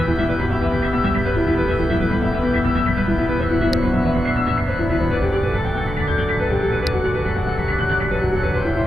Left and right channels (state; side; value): normal; both; correlation 0.88